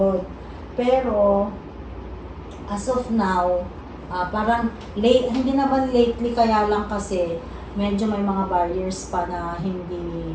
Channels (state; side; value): identical; both; correlation 1.00